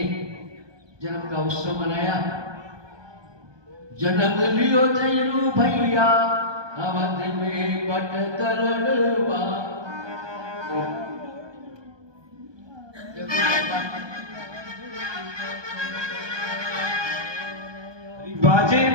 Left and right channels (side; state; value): left; late; 1.2 ms